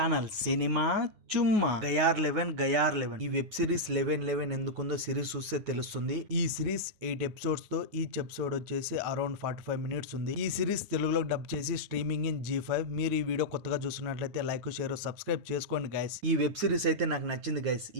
cinema Chumma. గయార్ 11 ఈ web series 11 ఎందుకుందో series చూస్తే తెలుస్తుంది. ఈ సిరీస్ 8 ఎపిసోడ్స్ తో ఈచ్ ఎపిసోడ్ వచ్చేసి అరౌండ్ 45 మినిట్స్ ఉంది. ఈ సిరీస్ తెలుగులో డబ్ చేసి స్ట్రీమింగ్ ఇన్ G5. మీరు ఈ వీడియో కొత్తగా చూస్తున్నట్లయితే లైక్ షేర్ సబ్స్క్రైబ్ చేసుకోండి గైస్. ఈ వెబ్ సిరీస్ అయితే నాకు నచ్చింది గైస్.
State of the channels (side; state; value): left; late; 9.4 ms